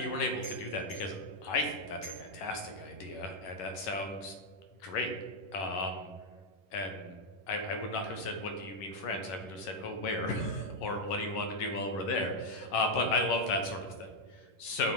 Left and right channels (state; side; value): late; right; 11 ms